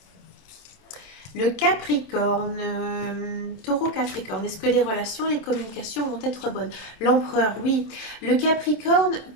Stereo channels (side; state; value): right; late; 27 ms